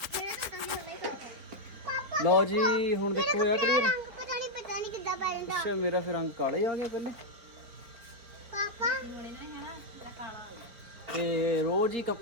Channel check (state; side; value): late; left; 4.5 ms